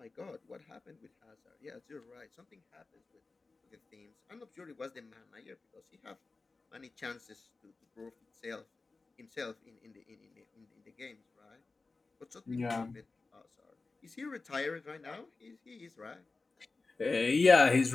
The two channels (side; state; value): right; quieter; 3.8 dB